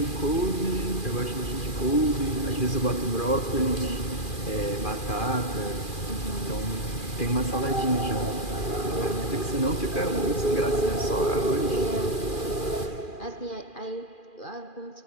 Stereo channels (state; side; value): late; right; 2.4 ms